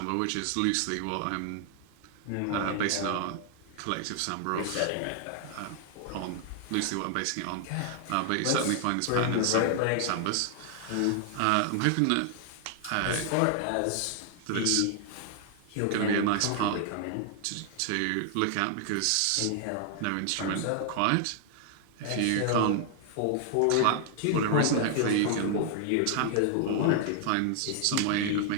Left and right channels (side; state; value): both; different; correlation 0.00